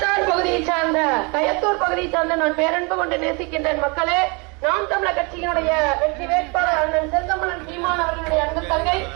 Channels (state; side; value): quieter; left; 30.9 dB